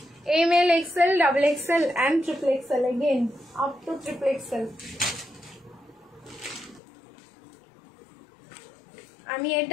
M L, XL, double XL and triple XL, again up to triple XL. আমি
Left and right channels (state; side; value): drops out; right; at 6.8 s